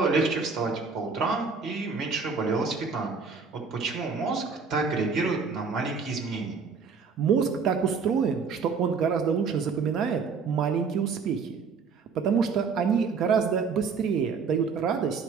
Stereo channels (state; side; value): quieter; left; 5.3 dB